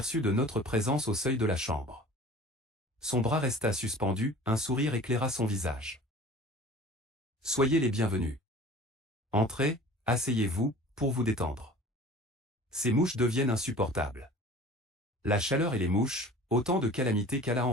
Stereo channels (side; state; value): both; normal; correlation 0.43